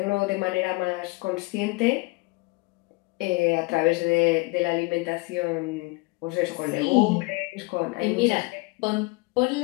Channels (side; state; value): right; quieter; 25.3 dB